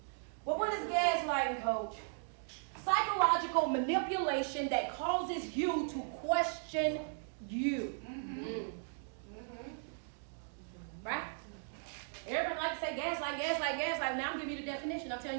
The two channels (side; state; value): left; silent; digital silence